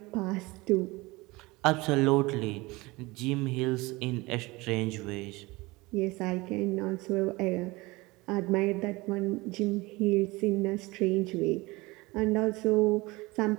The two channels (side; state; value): left; quieter; 22.6 dB